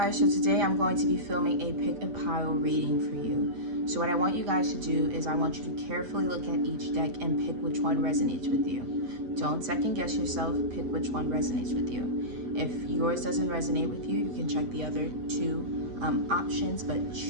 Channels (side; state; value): left; late; 8.4 ms